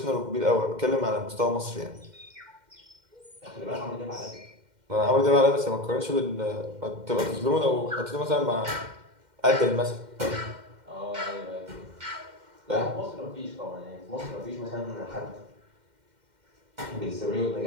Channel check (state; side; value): late; left; 2.1 ms